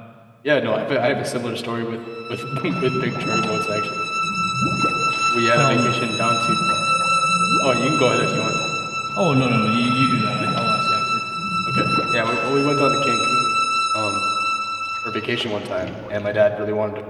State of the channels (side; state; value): both; identical; correlation 1.00